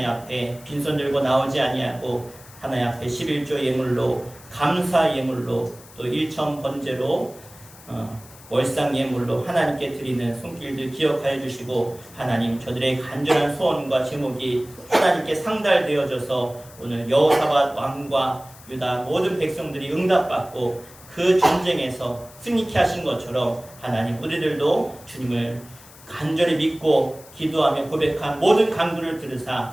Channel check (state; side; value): noise; left; hiss, 21 dB below the sound